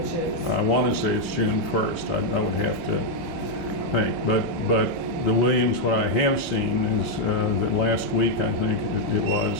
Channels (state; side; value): late; right; 1.6 ms